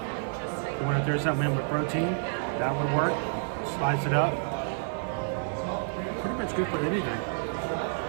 You want to throw something in with protein? That would work. Slice it up. Pretty much good for anything.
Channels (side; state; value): left; silent; digital silence